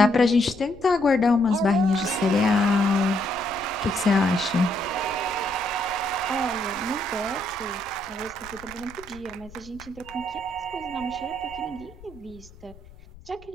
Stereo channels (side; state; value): left; noise; rumble, 21 dB below the sound